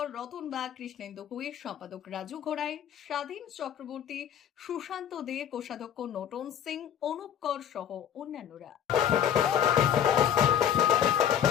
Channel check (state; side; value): quieter; right; 9.4 dB